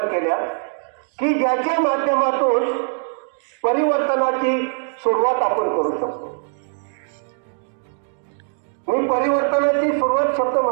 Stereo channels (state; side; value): silent; left; digital silence